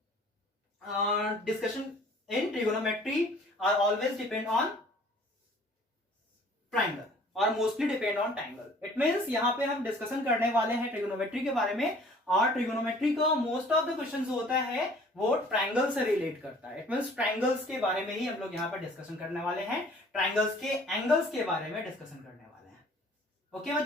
discussion in trigonometry are always depend on triangle और mostly depend on triangle. It means यहाँ पे हम डिस्कशन करने वाले हैं ट्रिगोनोमेट्री के बारे में, और ट्रिगोनोमेट्री का मोस्ट ऑफ द क्वेश्चंस होता है वो ट्रायंगल से रिलेट करता है. इट मींस ट्रायंगल्स के बारे में ही हम लोग यहाँ पर डिस्कशन करने वाले हैं. ट्रायंगल्स के एंगल्स के बारे में डिस्कशन करने वाले हैं. ओके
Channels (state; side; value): normal; both; correlation 0.53